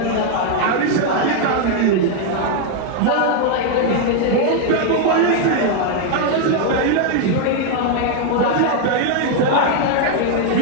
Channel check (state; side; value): different; both; correlation 0.00